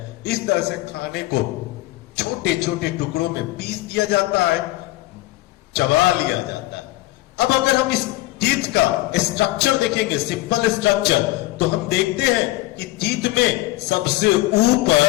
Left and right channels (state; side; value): quieter; right; 18.7 dB